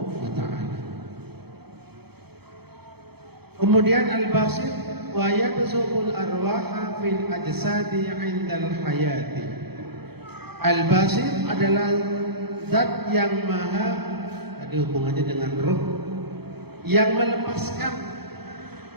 wa ta'ala. Kemudian al-basir wa yabsuqul arwaha fil ajsadi 'indal hayati. Al-basir adalah zat yang maha, ada hubungannya dengan roh, yang melepaskan,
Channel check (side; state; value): left; late; 0.97 ms